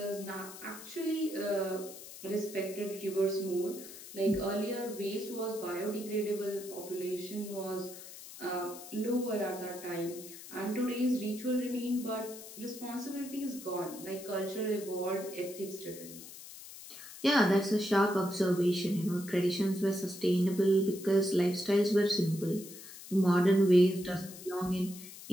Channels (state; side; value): noise; left; hiss, 14 dB below the sound